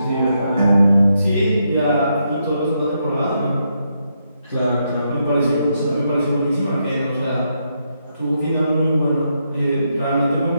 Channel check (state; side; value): inverted; both; correlation -0.80